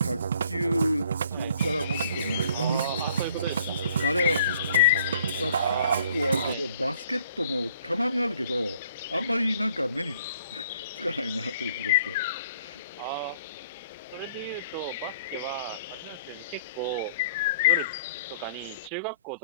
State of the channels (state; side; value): inverted; both; correlation -0.59